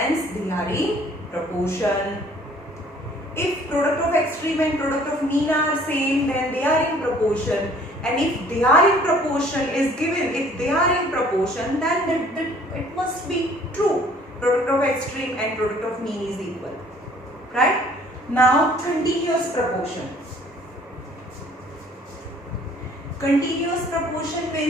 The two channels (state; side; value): normal; both; correlation 0.56